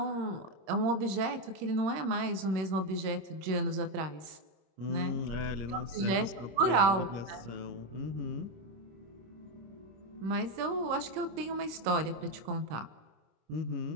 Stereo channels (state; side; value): late; left; 26 ms